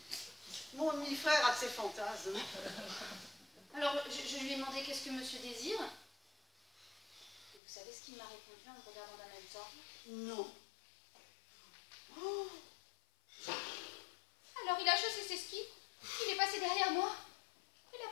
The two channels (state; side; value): drops out; right; at 7.6 s